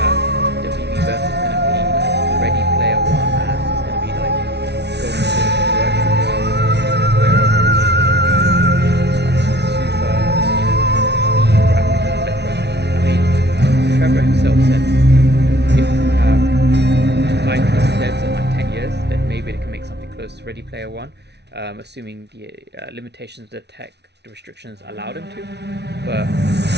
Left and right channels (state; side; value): late; left; 0.50 ms